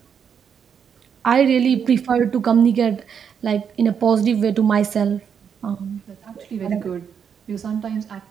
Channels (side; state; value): left; quieter; 7.4 dB